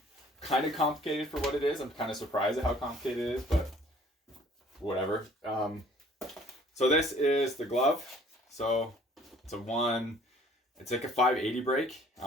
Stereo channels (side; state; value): both; normal; correlation 0.56